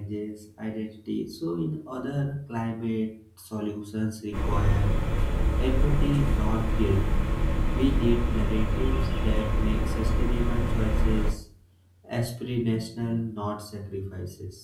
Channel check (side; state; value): both; identical; correlation 1.00